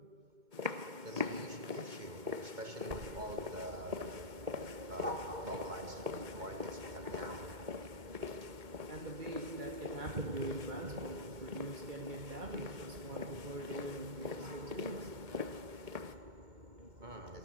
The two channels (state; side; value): late; left; 2.2 ms